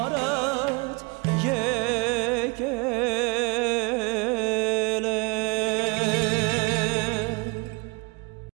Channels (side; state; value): left; quieter; 28.8 dB